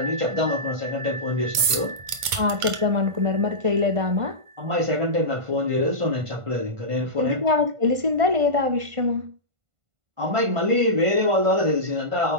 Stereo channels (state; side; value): late; left; 1.5 ms